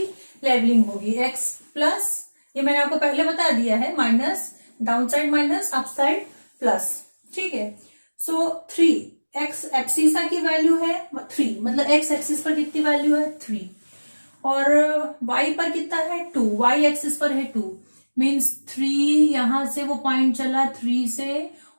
लेवलिंग होगी, एक्स प्लस, ये मैंने आपको पहले बता दिया है, minus, down side minus, up side plus, ठीक है। सो 3 एक्स एब्सिसा की वैल्यू है 3, मतलब एक्स एक्सिस पर कितनी वैल्यू है 3, और y पर कितना है 2, y एक्सिस पर है 2, मीन्स 3 यहां से वो पॉइंट चला 3 से,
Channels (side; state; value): both; inverted; correlation -1.00